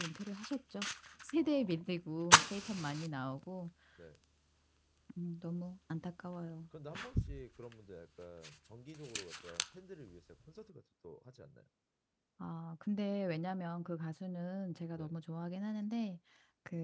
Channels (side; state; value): both; identical; correlation 1.00